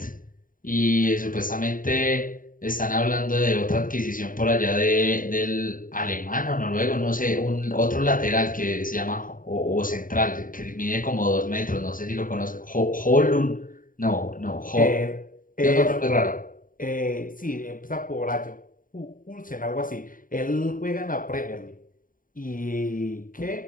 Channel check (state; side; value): late; right; 0.40 ms